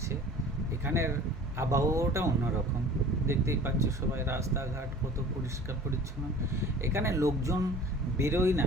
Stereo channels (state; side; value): normal; both; correlation 0.45